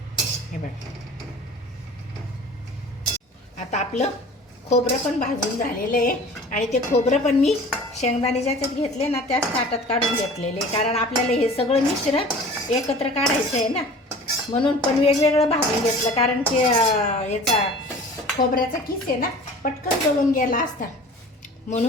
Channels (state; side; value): normal; both; correlation 0.43